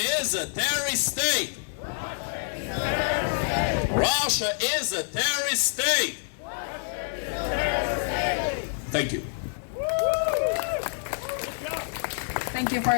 is a terrorist state! Russia is a terrorist state! Thank you. Thank you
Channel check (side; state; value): right; silent; 55 dB below the other